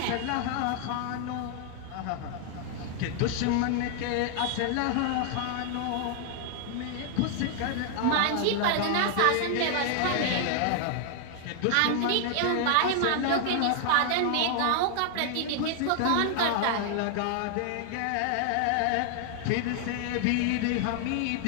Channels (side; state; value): both; different; correlation 0.00